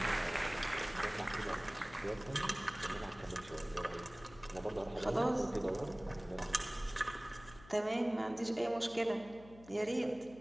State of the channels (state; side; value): noise; left; hum, 20 dB below the sound